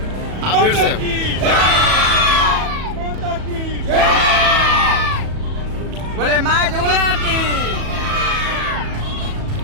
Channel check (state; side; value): late; left; 37 ms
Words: आप फिर से बोले माँ जुगला की।